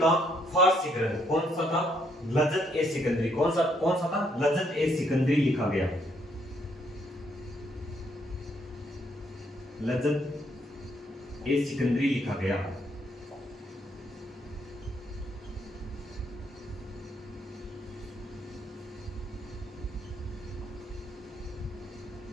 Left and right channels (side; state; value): both; normal; correlation 0.71